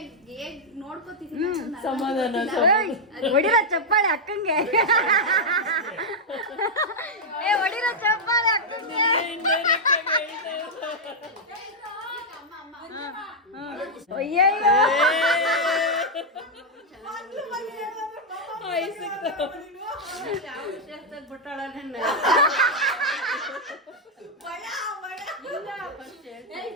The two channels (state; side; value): normal; both; correlation -0.02